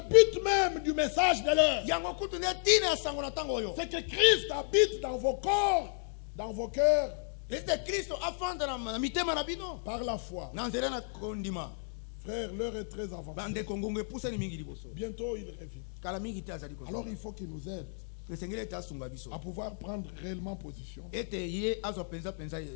but même du message de l'heure. C'est que Christ habite dans vos corps, dans vos cœurs, par la foi. Frère, l'heure est très avancée. Bientôt il revient. Alors il faut qu'il nous aide à pouvoir prendre réellement position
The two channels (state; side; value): silent; right; digital silence